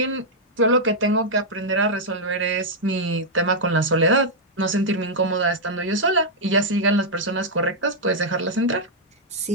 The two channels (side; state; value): both; normal; correlation -0.05